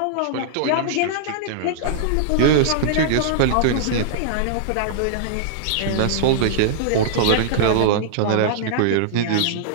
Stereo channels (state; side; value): different; both; correlation -0.02